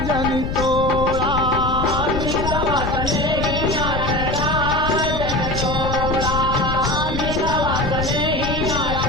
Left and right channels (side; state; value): left; noise; rumble, 3 dB below the sound